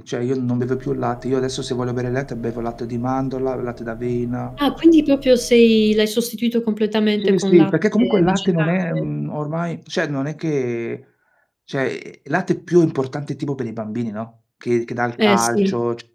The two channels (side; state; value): both; identical; correlation 1.00